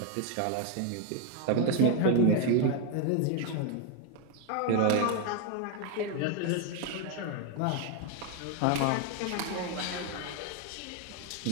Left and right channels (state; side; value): different; both; correlation 0.01